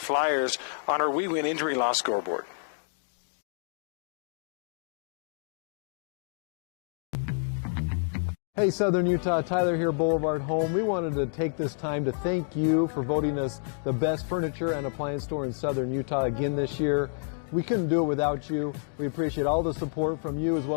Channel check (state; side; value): silent; right; digital silence